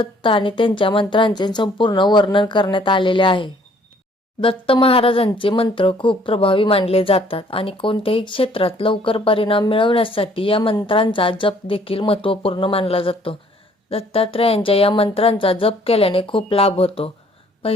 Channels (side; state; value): both; normal; correlation 0.60